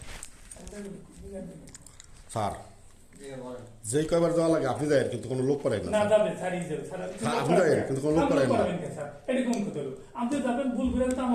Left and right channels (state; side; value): identical; both; correlation 1.00